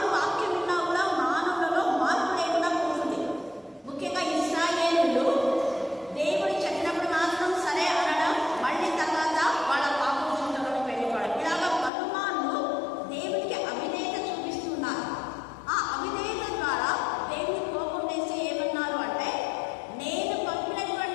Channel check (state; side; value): drops out; right; at 11.9 s